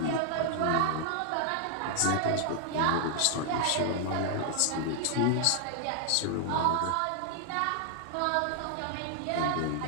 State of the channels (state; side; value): different; both; correlation 0.00